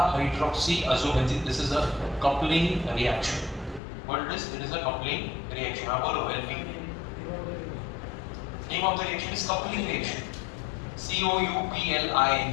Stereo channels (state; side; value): drops out; right; at 3.8 s